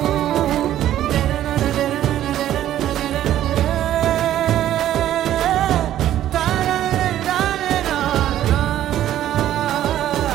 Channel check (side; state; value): left; quieter; 12.3 dB